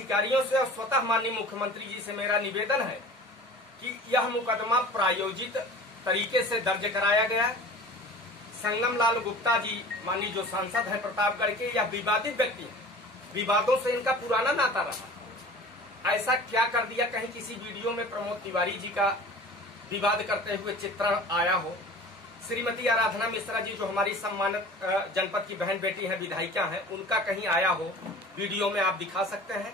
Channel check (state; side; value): normal; both; correlation 0.41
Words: से और स्वतः माननीय मुख्यमंत्री जी से मेरा निवेदन है कि यह मुकदमा प्रायोजित तरीके से दर्ज कराया गया। संगम लाल गुप्ता जी माननीय जो सांसद हैं प्रतापगढ़ के, यह विवादित व्यक्ति हैं, विवादों से इनका पुराना नाता रहा। ऐसा क्या कर दिया कहीं किसी वीडियो में प्रमोद तिवारी जी का विवाद करते हुए चित्रण आया हो। श्रीमती आराधना मिश्रा जी जो हमारी सम्मानित जनपद की बहन बेटी है, विधायिका है, उनका कहीं आया हो वीडियो में आप दिखा सकते हैं